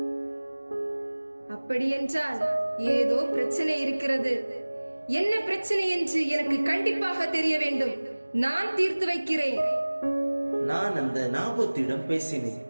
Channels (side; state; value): both; inverted; correlation -1.00